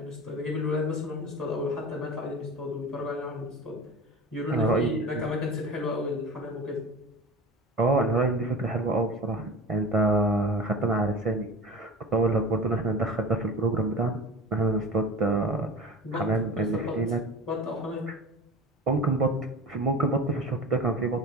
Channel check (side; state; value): both; normal; correlation 0.34